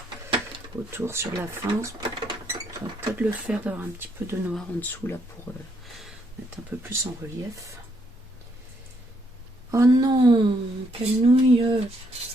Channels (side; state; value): both; normal; correlation 0.73